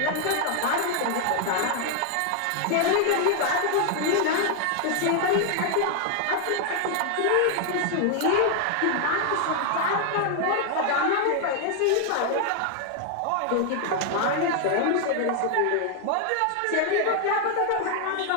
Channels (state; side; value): different; both; correlation 0.00